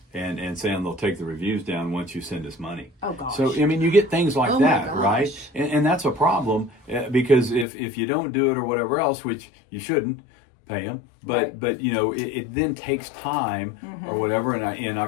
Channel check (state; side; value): drops out; right; at 7.7 s